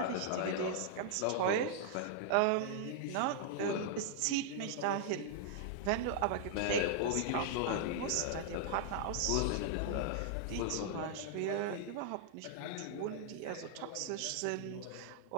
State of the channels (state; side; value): different; both; correlation -0.01